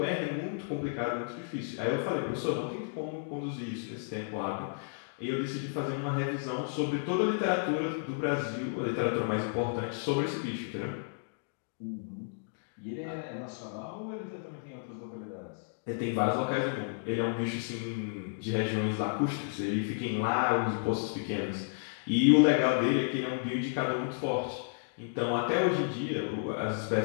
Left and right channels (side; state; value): right; silent; digital silence